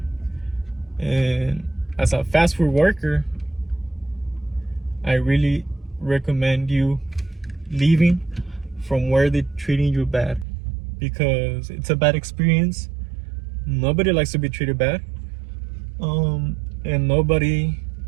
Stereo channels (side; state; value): left; drops out; at 10.5 s